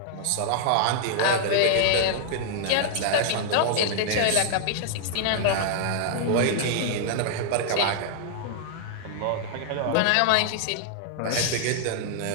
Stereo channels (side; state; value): both; different; correlation -0.01